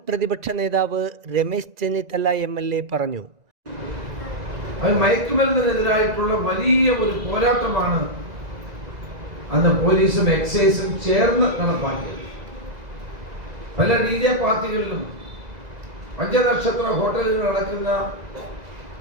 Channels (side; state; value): left; late; 2.0 ms